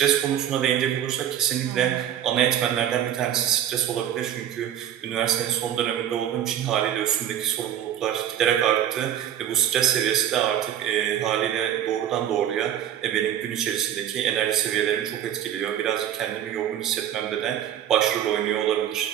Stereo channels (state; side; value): quieter; left; 10.4 dB